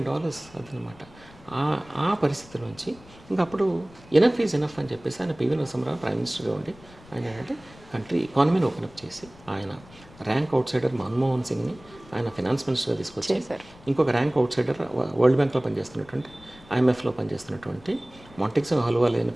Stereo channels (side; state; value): left; noise; rumble, 23 dB below the sound